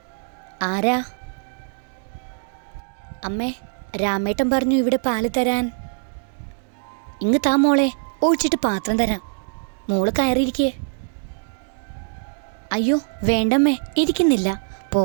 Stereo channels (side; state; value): left; silent; 63 dB below the other